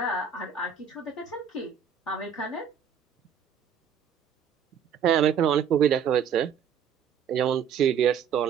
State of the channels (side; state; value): left; quieter; 7.6 dB